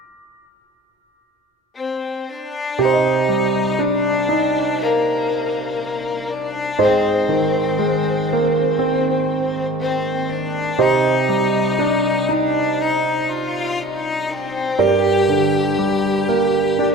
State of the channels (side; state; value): both; normal; correlation 0.46